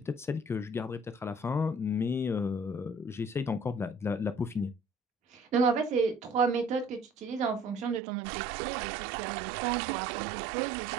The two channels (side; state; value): left; drops out; at 8.0 s